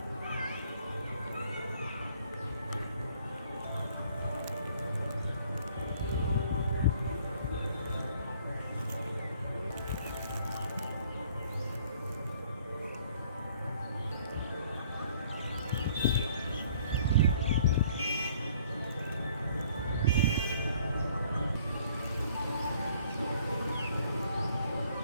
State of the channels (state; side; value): inverted; both; correlation -0.58